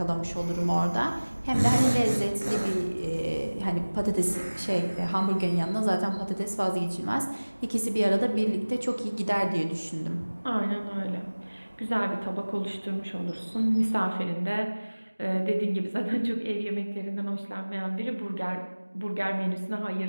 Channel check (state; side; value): inverted; both; correlation -1.00